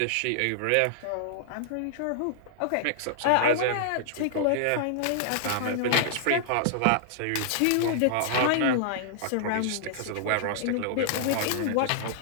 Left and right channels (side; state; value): both; different; correlation -0.01